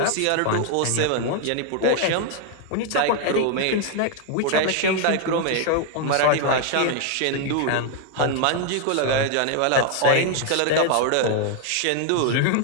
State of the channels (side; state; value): both; different; correlation 0.00